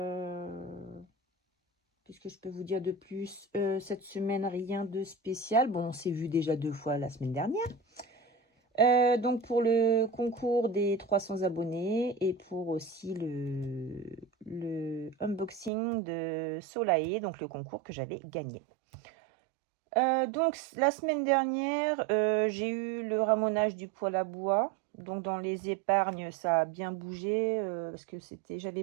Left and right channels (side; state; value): left; drops out; at 15.7 s